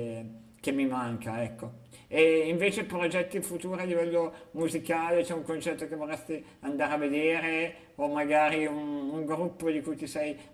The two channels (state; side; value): identical; both; correlation 1.00